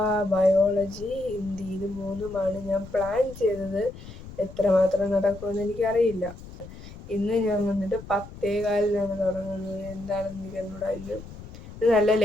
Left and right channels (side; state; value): left; noise; rumble, 15 dB below the sound